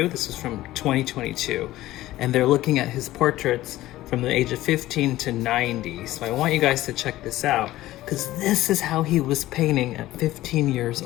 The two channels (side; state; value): right; quieter; 15.9 dB